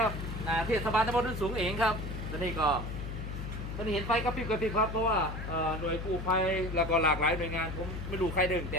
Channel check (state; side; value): noise; left; hum, 6 dB below the sound